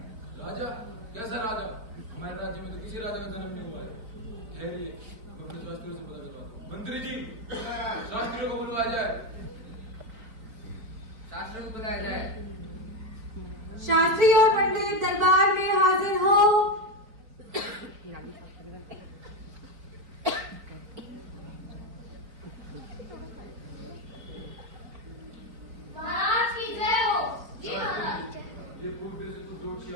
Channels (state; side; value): late; left; 4.6 ms